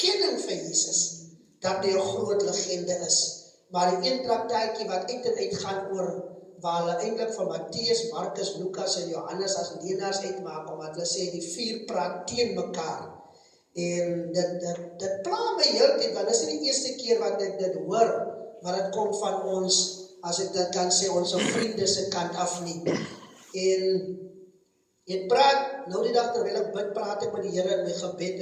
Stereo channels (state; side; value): identical; both; correlation 1.00